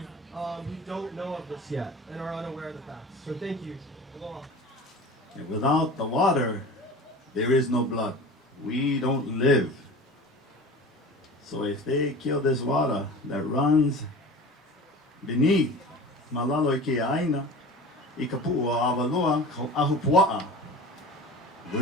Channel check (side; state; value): both; normal; correlation 0.37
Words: who don't know of this yet and are unaware of the facts. So thank you. Aloha. And without the water, there is no blood. We don't live. So if they kill this water that runs beneath Malalo ke aina, I kapua awaloa ko ahupua'a,